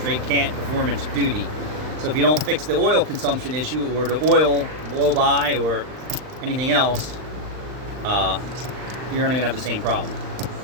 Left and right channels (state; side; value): late; left; 39 ms